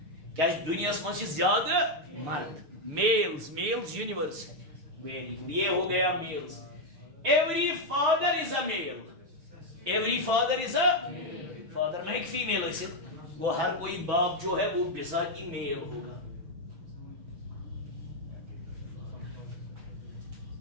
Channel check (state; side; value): late; left; 6.8 ms